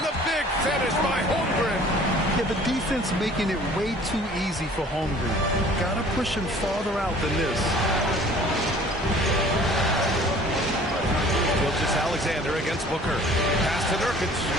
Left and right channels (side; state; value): both; normal; correlation 0.51